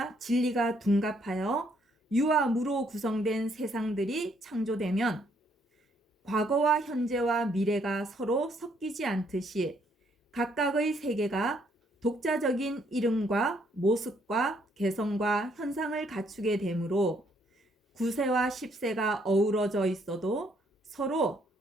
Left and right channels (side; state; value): both; normal; correlation 0.69